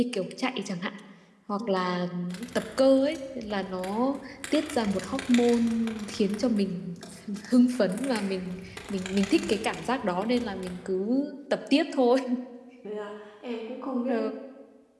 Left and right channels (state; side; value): identical; both; correlation 1.00